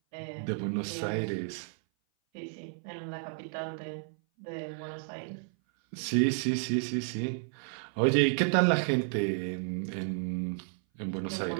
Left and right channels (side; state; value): left; silent; 56 dB below the other